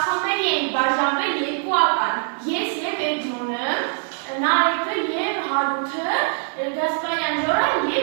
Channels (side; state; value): left; silent; 58 dB below the other